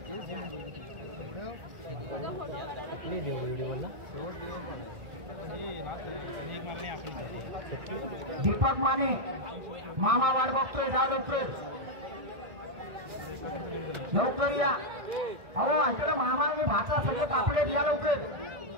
दीपक माने मामा वाट बघतोय. जा लवकर या. अहो इकडे मामा आणि भाचा सगळे तापले या लवकर.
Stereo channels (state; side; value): late; left; 1.6 ms